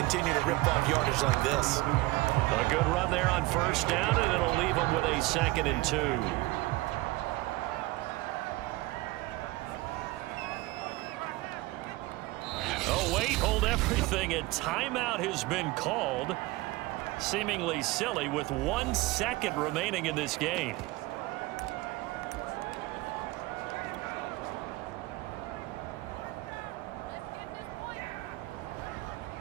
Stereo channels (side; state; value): left; quieter; 20.5 dB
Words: to rip off yardage like this. A good run there on 1st down, and it'll leave them with a 2nd and 2. Oh, wait, hold everything. A timeout has been called. Seemingly silly with 1 second remaining in this game.